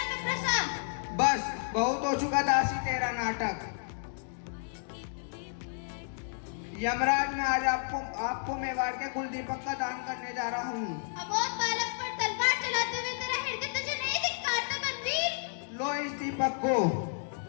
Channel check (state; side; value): silent; right; digital silence